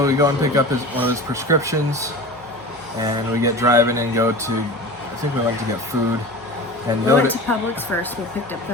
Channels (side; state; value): both; normal; correlation 0.33